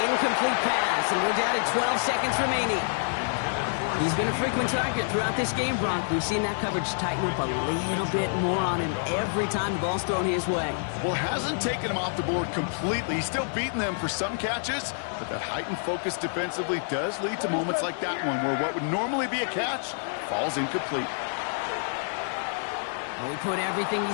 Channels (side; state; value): right; silent; 60 dB below the other